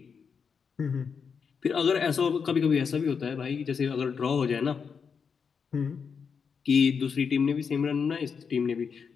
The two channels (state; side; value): quieter; right; 6.1 dB